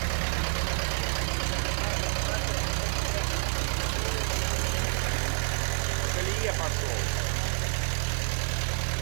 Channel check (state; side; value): silent; left; 59 dB below the other